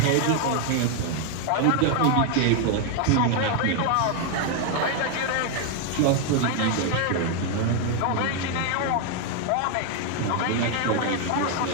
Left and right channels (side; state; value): both; different; correlation 0.00